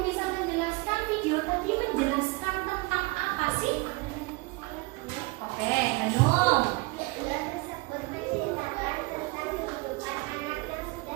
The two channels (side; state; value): left; quieter; 24.3 dB